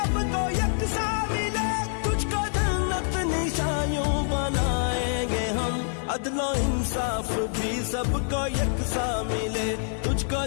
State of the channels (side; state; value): right; silent; 61 dB below the other